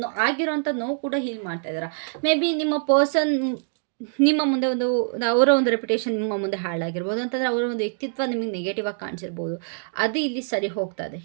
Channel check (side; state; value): left; silent; digital silence